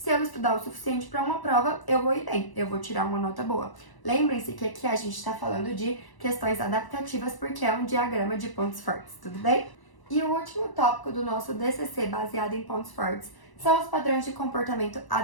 eu estudar o suficiente para uma prova, eu vou ir bem, eu vou tirar uma nota boa. Lembrem-se que aqui a gente está falando de questões adaptativas porque é um diagrama de pontos fortes, tudo bem? E o último tópico do nosso DCC baseado em pontos fortes são os padrões de comportamento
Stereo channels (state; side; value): late; right; 1.0 ms